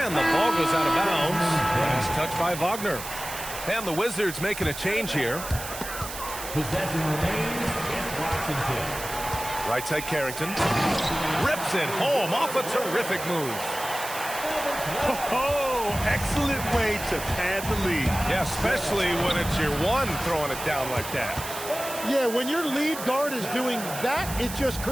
the ball goes out of bounds. He's touched by Wagner. And the Wizards making a change here. Possession remains against Washington. Right side Carrington. Rips it home off a terrific move. Oh, excellent way to pad the lead. Yeah, especially when it's your one throwing it down like that. Yeah, when your lead guard is doing that, it just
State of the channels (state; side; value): noise; right; hiss, 9 dB below the sound